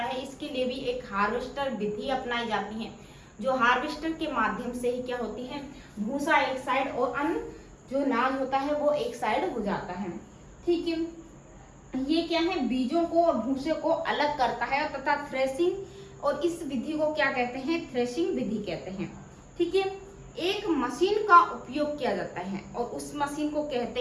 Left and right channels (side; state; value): both; identical; correlation 1.00